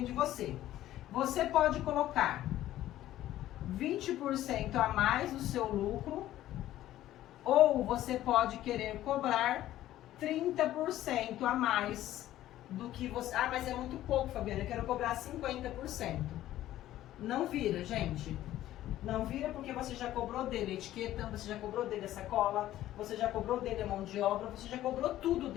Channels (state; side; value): quieter; right; 13.8 dB